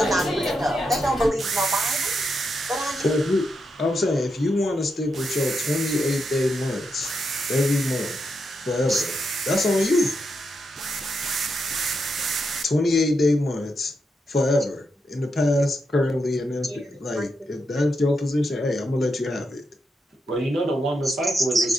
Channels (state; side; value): normal; both; correlation 0.84